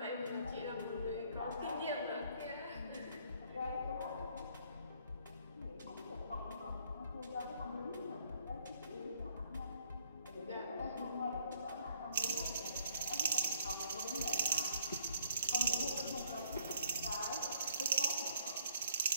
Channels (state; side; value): inverted; both; correlation -0.63